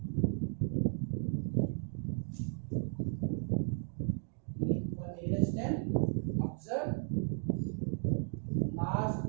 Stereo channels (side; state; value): left; silent; 54 dB below the other